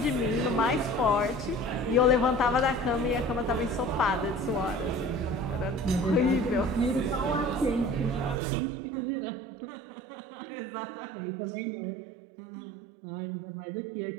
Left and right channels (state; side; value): drops out; left; at 8.4 s